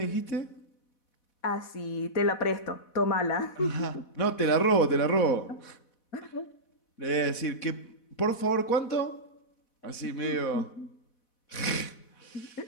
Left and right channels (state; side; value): late; right; 4.1 ms